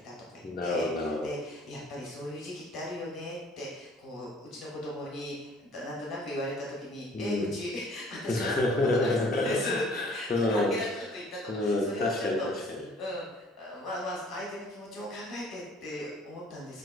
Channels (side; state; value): both; normal; correlation 0.55